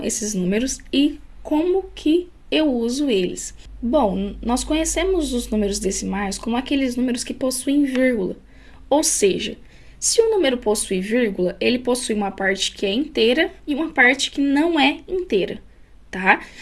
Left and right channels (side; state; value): both; identical; correlation 1.00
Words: esses números e como que eu uso eles. Bom, nós conhecemos os números decimais como aqueles números que possuem vírgula. Ou seja, se o número possui vírgula, ele possui uma parte que é inteira e uma parte que não é inteira, tá?